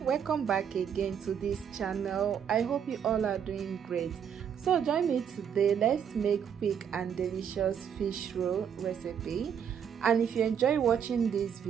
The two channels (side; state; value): left; quieter; 8.1 dB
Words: welcome back again to this channel. I hope you all are doing great. So join me today. Let's make quick and delicious fish roll recipe. And if you enjoy watching this